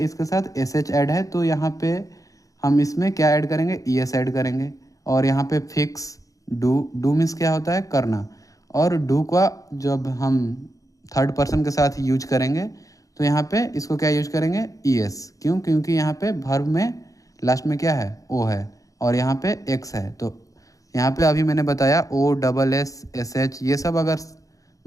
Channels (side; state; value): right; late; 0.16 ms